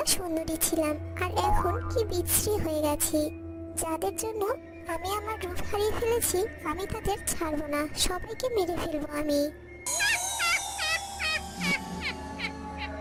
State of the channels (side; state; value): both; identical; correlation 1.00